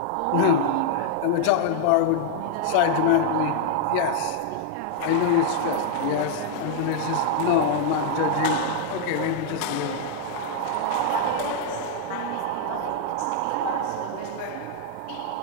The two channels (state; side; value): different; both; correlation -0.01